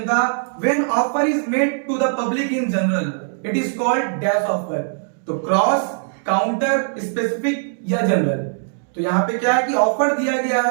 था when offer is made to the public in general it is called dash offer. तो क्रॉस, काउंटर, स्पेसिफिक या जनरल। तो यहाँ पे क्या है कि ऑफर दिया गया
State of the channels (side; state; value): left; silent; digital silence